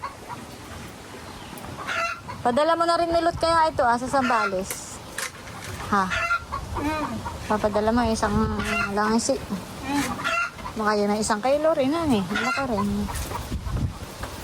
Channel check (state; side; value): identical; both; correlation 1.00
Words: Padala mo na rin nilot kaya ito sa Sambales. Ha? Papadala mo isang langisi. Baka yun ang 1 kilo rin eh. Malaki rin.